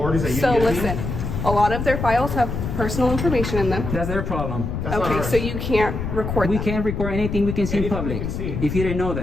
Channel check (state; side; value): noise; left; rumble, 4 dB below the sound